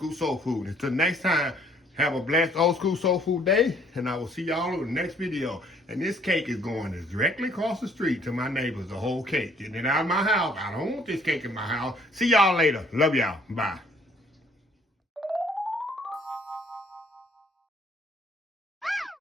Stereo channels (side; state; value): both; normal; correlation 0.62